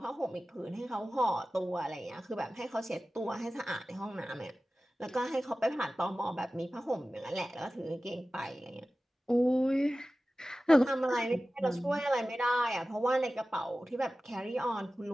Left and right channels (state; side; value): normal; both; correlation 0.95